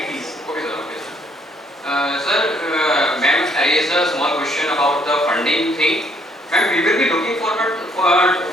please. Okay, sir. Okay, sir. Sir, ma'am raised a small question about the funding thing. Ma'am, we will be looking forward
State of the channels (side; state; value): both; normal; correlation 0.66